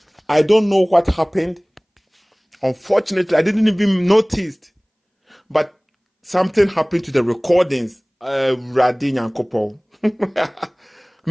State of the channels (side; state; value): both; identical; correlation 1.00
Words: I don't know what happened. Unfortunately, I didn't even notice. But something happened to the recordings. Radin and Kopo.